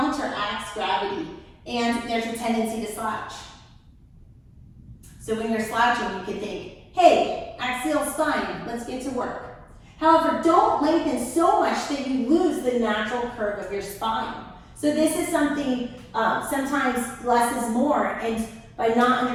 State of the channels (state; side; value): identical; both; correlation 1.00